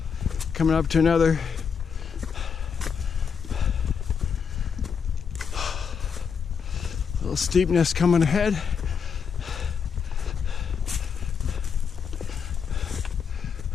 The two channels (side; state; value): right; quieter; 6.6 dB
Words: Coming up to another little steepness coming ahead.